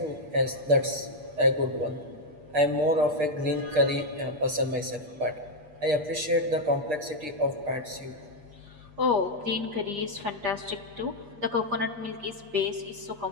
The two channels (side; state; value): left; late; 8.4 ms